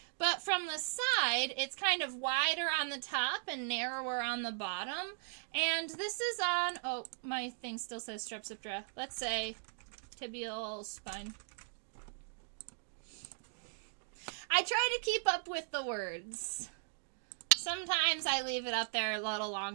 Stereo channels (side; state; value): left; silent; digital silence